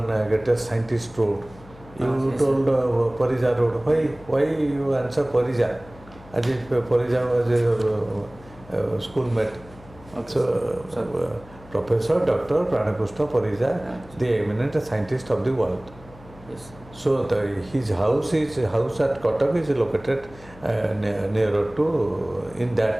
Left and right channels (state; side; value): noise; left; hum, 21 dB below the sound